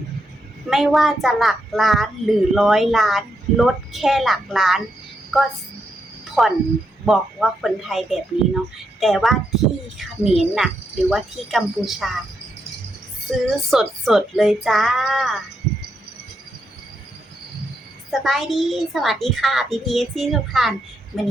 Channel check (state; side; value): normal; both; correlation 0.81